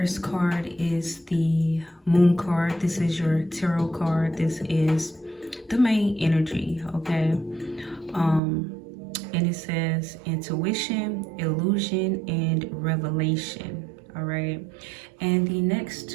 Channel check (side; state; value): left; drops out; at 8.4 s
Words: card is the Moon card. This is your tarot card. This is the main energy, okay? And it says intuition, illusion, and revelation. All right, and the next